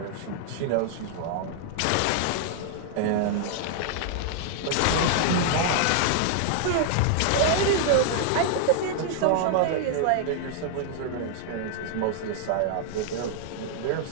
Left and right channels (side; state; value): both; different; correlation 0.00